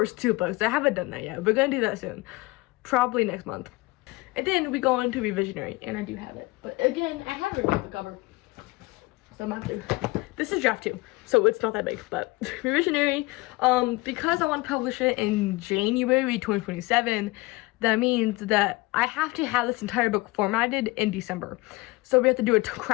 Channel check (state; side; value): quieter; right; 22.4 dB